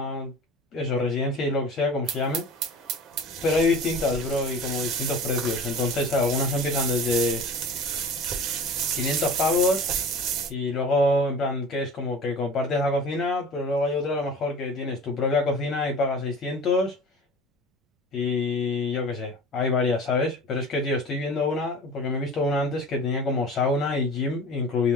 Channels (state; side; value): normal; both; correlation 0.39